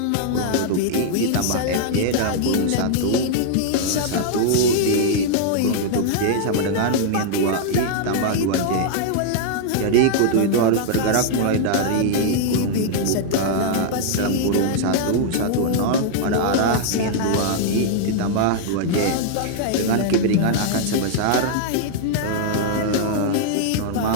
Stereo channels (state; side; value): different; both; correlation -0.01